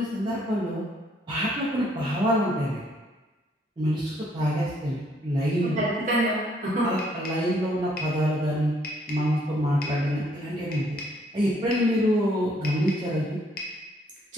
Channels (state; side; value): normal; both; correlation 0.67